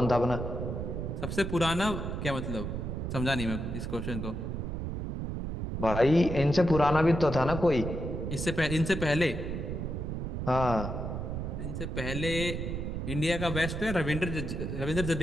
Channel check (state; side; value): noise; right; rumble, 4 dB below the sound